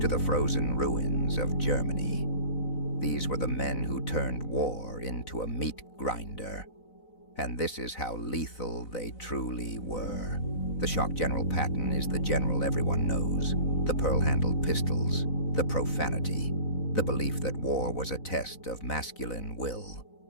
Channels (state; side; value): late; right; 4.0 ms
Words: to the frozen ruins of Germany. These were the men who turned war into a meat grinder. And this is how lethal they truly were. The shock General Patton is the general everyone knows. The pearl-handled pistols, the profanity, the belief that war was a test of masculine will.